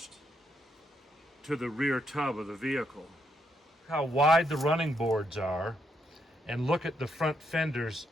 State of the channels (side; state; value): both; normal; correlation 0.77